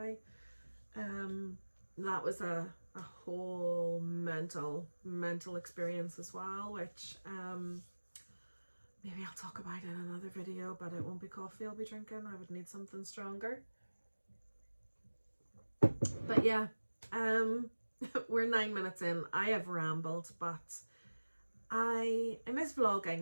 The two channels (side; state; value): both; inverted; correlation -1.00